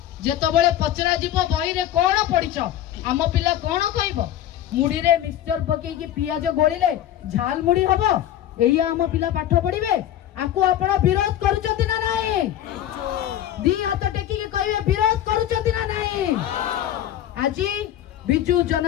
जेतबळे पचरा जिवो बही रे कोन पढ़िछ आम पिला कोन कहइबो मुड़ी रे मिक्सचर पके की पियाज गोलिले झाल मुड़ी हबो एई आम पिला पाठ पढ़िबे आकु आपण विरोध करूचंती ना नाही दी हाथ टेकी के कहबे विरोध करूचंती ना नाही आजी बिजू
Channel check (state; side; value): quieter; right; 11.7 dB